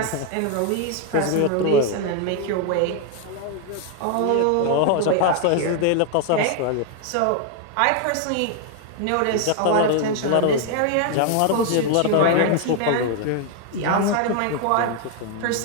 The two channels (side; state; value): both; different; correlation 0.01